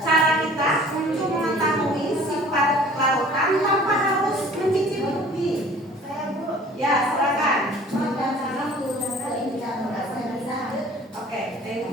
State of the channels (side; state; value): both; normal; correlation 0.49